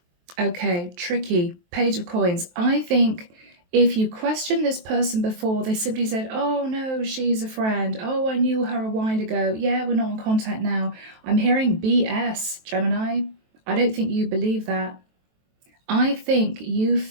Okay, tricky. Page of Coins. I think if you question this person before, they simply said, oh no, she's a friend. Oh, I knew her a while ago. Yeah, we're not in contact now. I'm hearing BS, Gemini. I don't think you believe that. I think you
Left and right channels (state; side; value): late; left; 23 ms